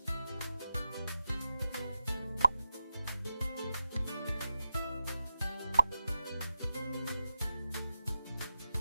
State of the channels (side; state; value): both; inverted; correlation -0.91